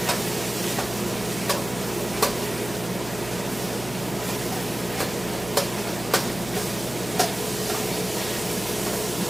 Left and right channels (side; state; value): right; noise; hum, 12 dB below the sound